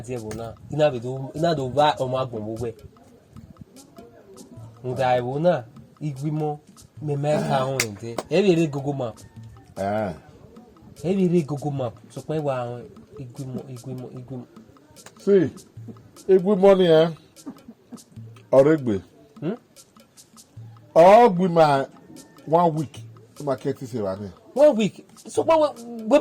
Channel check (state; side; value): identical; both; correlation 1.00